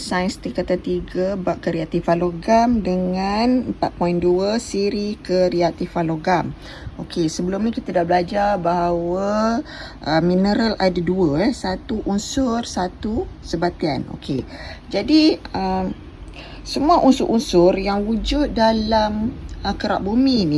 tingkatan 3 bab kereaktifan logam dengan 4.2 siri kereaktifan logam. Okey, sebelum ni kita dah belajar bahawa mineral ada dua, satu unsur, satu sebatian. Okey. Jadi semua unsur-unsur yang wujud dalam kerak bumi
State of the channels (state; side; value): identical; both; correlation 1.00